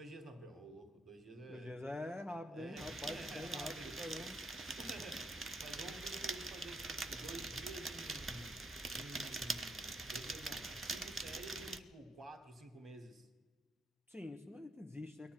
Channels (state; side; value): normal; both; correlation 0.75